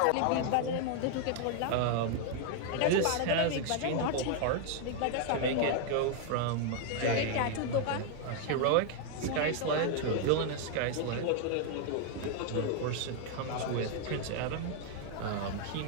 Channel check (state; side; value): different; both; correlation 0.00